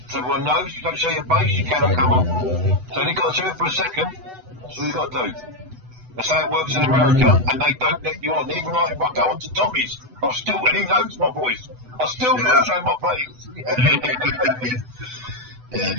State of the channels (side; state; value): left; late; 8.0 ms